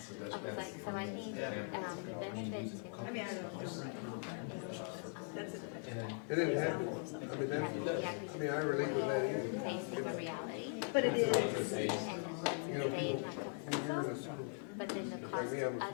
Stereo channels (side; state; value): right; silent; 51 dB below the other